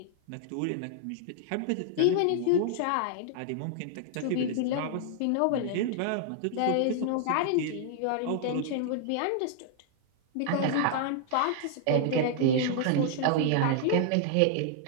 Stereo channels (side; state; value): both; different; correlation -0.01